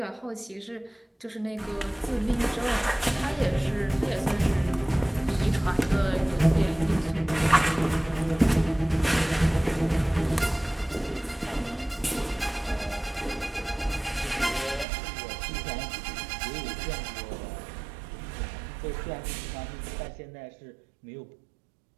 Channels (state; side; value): drops out; left; at 14.9 s